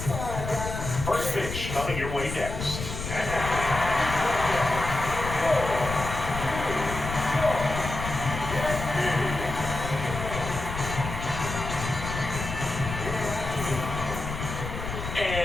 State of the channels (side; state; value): left; noise; rumble, 6 dB below the sound